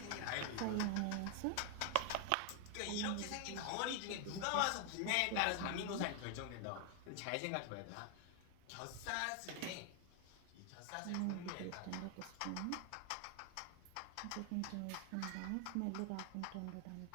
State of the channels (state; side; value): different; both; correlation 0.00